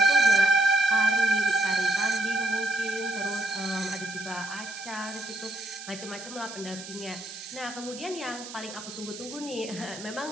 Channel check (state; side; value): noise; right; hiss, 12 dB below the sound